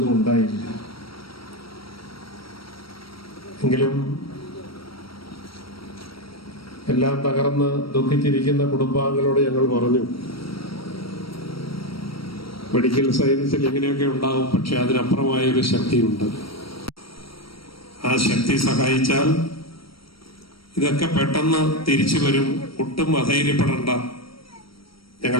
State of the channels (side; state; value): right; late; 0.75 ms